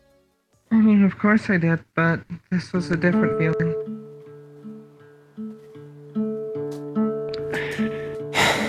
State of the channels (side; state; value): both; identical; correlation 1.00